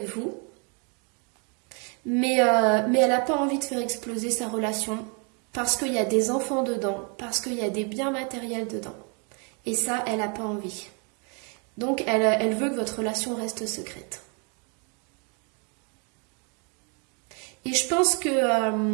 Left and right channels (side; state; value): left; quieter; 36.0 dB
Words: vous, mais elle n'a pas envie de faire exploser sa relation parce qu'il y a des enfants dedans, parce qu'il y a des biens matériels dedans. Et ça, elle n'a pas envie. Donc elle veut que votre relation reste secrète. Et je pense